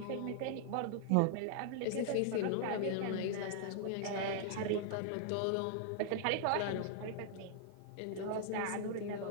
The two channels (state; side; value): different; both; correlation -0.01